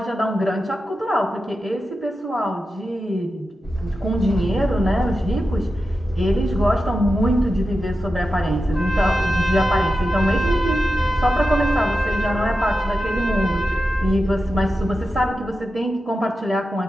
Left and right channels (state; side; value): normal; both; correlation 0.91